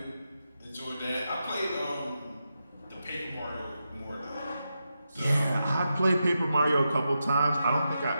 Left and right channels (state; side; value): inverted; both; correlation -0.87